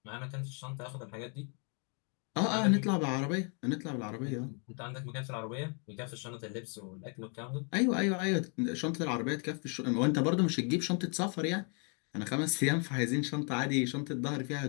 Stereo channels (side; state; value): right; quieter; 38.6 dB